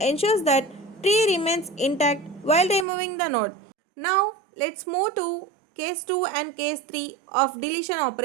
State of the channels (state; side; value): drops out; left; at 2.9 s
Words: ensures that tree remains intact while removing the node. Now let's move to case 2 and case 3 of deletion